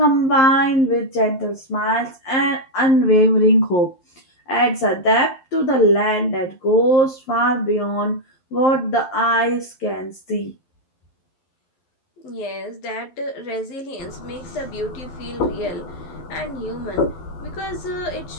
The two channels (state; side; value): late; right; 11 ms